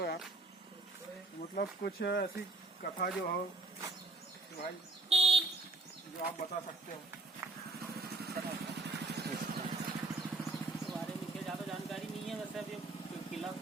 यार। मतलब कुछ ऐसी कथा जो हो कि भाई जो आप बता सकते हो। बारे में ज़्यादा जानकारी नहीं है। वैसे अभी किला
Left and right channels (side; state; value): left; quieter; 3.3 dB